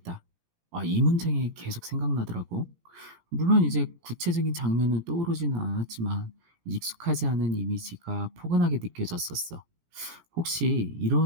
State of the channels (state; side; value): late; left; 18 ms